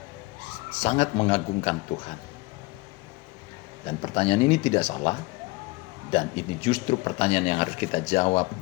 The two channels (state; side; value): quieter; right; 23.8 dB